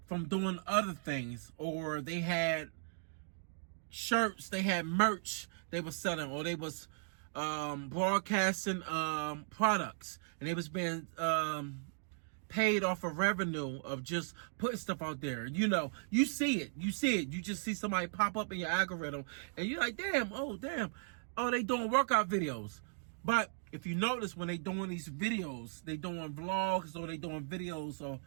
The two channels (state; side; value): silent; left; digital silence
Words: from doing other things, or they had shirts, they had merch they were selling, or they was broadcasting products, and they was being paid off of revenue of just putting stuff out there. You know, you see it. You just see somebody pop up in your algorithm, and you're like, damn, oh, they doing workout videos. But if you notice, when they doing these videos, they doing vlogs, or they doing videos or